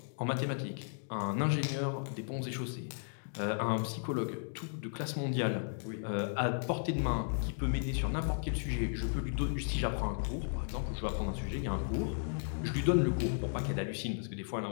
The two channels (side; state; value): right; silent; digital silence